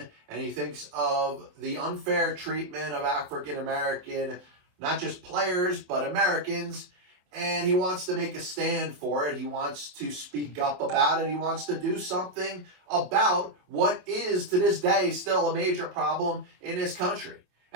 and he thinks of the unfair treatment of African American, not just players, but Americans, and he wants to make a stand for it. He wants to speak up about it. He wants to do something about what is, to this day, still a major problem in this country.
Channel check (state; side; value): late; left; 28 ms